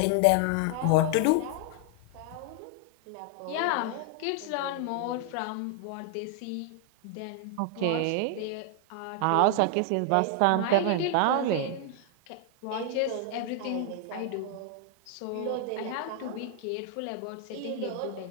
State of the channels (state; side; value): different; both; correlation 0.00